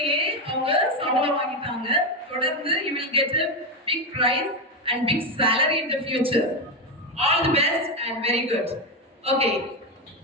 அவங்க சம்பளம் வாங்கிட்டாங்க. தொடர்ந்து you will get a big prize and big salary in the future. All the best and very good. Okay.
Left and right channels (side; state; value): both; normal; correlation 0.11